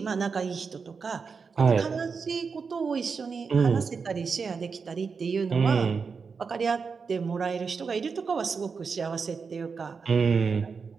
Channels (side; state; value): left; quieter; 5.3 dB